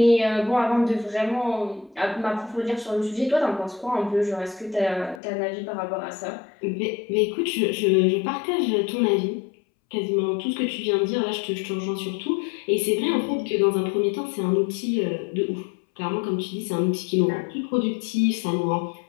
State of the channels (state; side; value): drops out; right; at 5.2 s